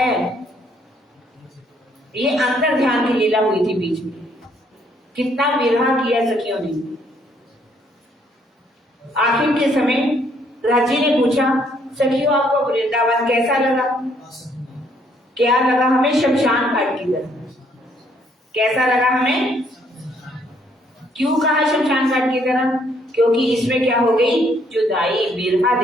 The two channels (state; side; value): normal; both; correlation 0.67